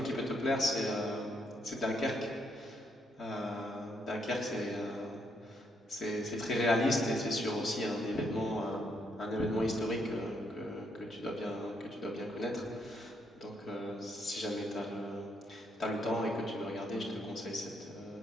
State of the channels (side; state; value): both; normal; correlation 0.75